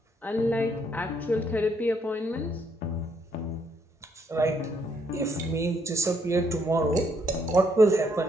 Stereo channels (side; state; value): both; normal; correlation 0.72